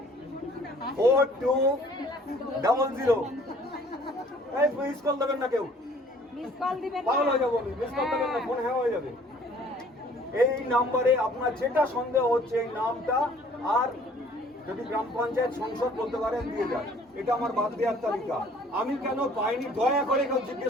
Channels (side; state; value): both; normal; correlation 0.55